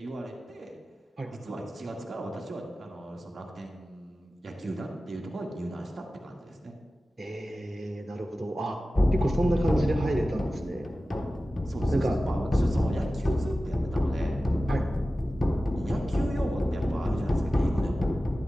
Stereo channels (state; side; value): normal; both; correlation 0.95